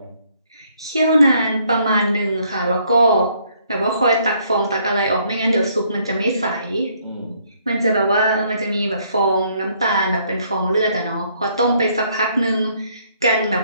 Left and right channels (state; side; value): inverted; both; correlation -0.67